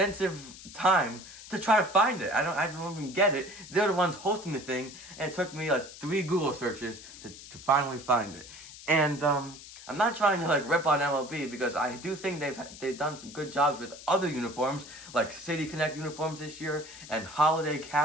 time to try to find it. I don't even get it. They're the ones hosting the thing, and it took me like 3 Google searches to finally find it. And I'm not trying to like rip on MLB because I do think they've done some good jobs with other uniforms, like City Connect uniforms this year and holiday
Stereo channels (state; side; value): noise; left; hiss, 16 dB below the sound